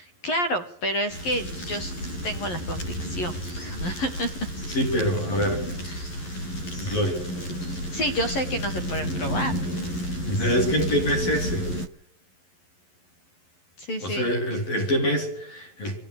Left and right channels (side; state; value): right; late; 11 ms